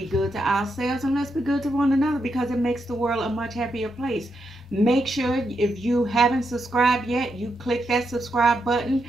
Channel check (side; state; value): both; normal; correlation 0.83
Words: good to ourselves and let's be good to one another because it makes the world a much happier place. Make sure if you haven't subscribed yet, you click that subscribe button.